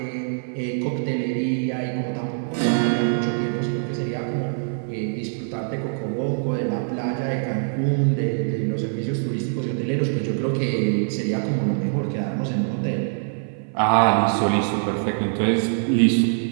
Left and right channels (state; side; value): silent; left; 56 dB below the other